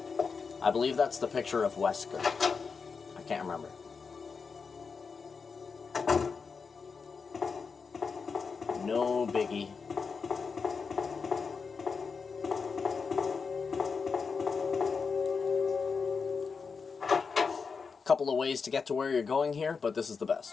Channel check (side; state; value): right; quieter; 5.3 dB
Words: I believe that's the picture of Wesker. I can't remember. No biggie. Couple of ways to get to where you're going here, but this is the